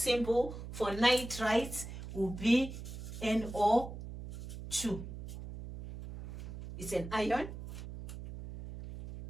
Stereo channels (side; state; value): right; noise; hum, 10 dB below the sound